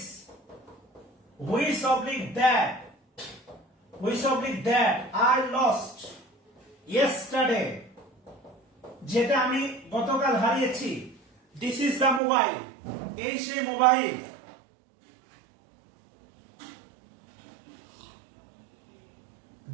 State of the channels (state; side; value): drops out; left; at 12.2 s